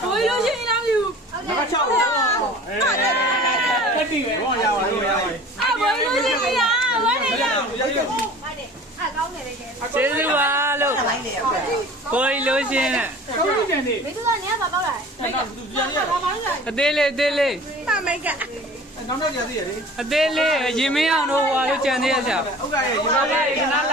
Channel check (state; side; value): normal; both; correlation 0.43